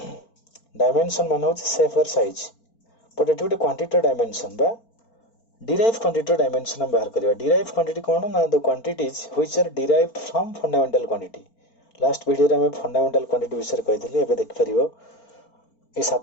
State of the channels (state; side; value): late; right; 4.4 ms